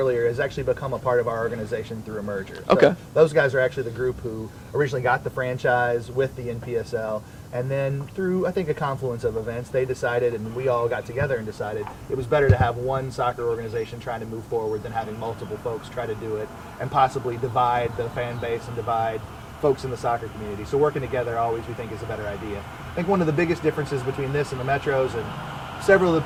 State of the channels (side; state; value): both; identical; correlation 1.00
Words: has actually become a part of our organization through a merger. Okay. So those guys are actually the group who originally got the franchise with the NPSL, and then through, I think, a confluence of events, they decided, and we all got together and decided it was better to have one soccer organization trying to move forward than having multiple folks try to do it and possibly divide the fan base and divide folks in the soccer community. So working together always, we think, is a better idea. I think one of the biggest differences between this and the Metros, and several of